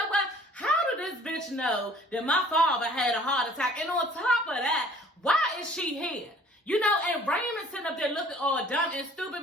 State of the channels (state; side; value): normal; both; correlation 0.53